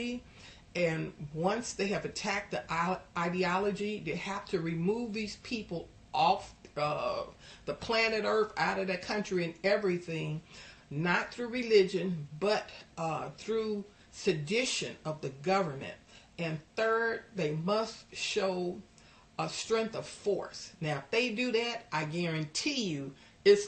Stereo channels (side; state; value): both; identical; correlation 1.00